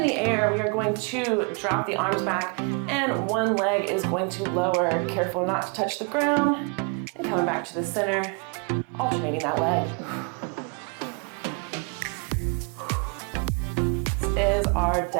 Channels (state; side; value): quieter; left; 35.7 dB